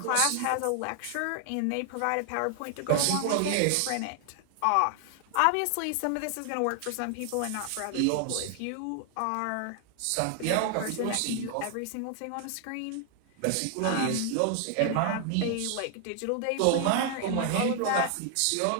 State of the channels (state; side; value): different; both; correlation 0.00